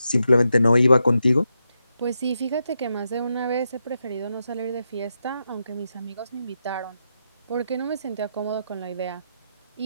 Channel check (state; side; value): inverted; both; correlation -0.85